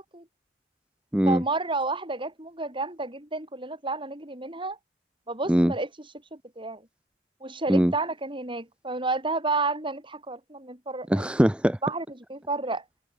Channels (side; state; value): both; normal; correlation 0.62